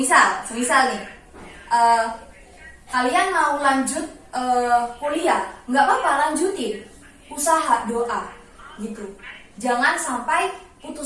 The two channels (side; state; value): both; identical; correlation 1.00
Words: nih, kalian mau lanjut kuliah, gak apa-apa, lanjutin, usaha, doa gitu. Jangan sampai